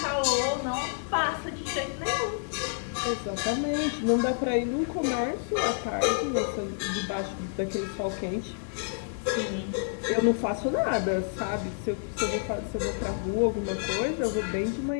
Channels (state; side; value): silent; right; 59 dB below the other